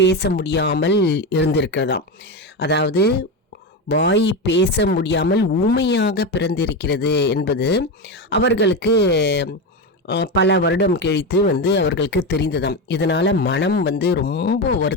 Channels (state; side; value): normal; both; correlation 0.16